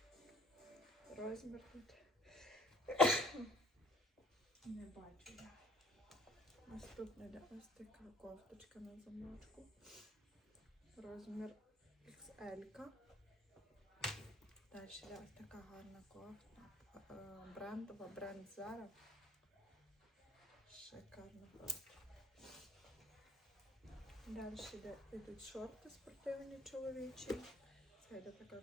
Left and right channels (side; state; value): both; normal; correlation 0.58